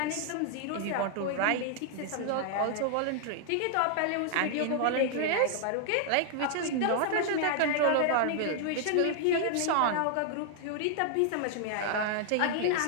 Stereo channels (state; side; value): different; both; correlation 0.00